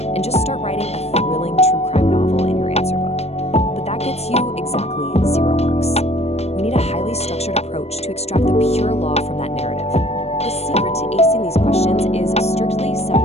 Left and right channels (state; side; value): late; right; 0.31 ms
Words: and just start writing a thrilling true crime novel in your answer book. But that gets you exactly 0 marks. We need a highly structured approach to extract the pure law from that narrative. The secret to acing these questions is strictly